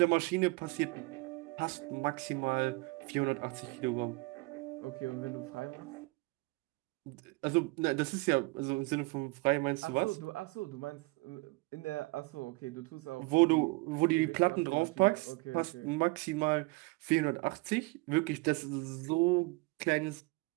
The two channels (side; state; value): left; quieter; 25.7 dB